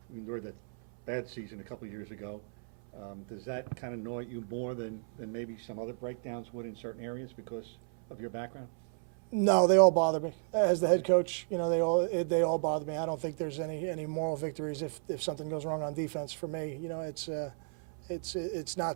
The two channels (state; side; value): silent; left; 55 dB below the other